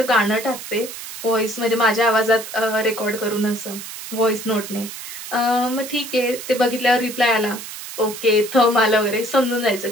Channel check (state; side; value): noise; right; hiss, 11 dB below the sound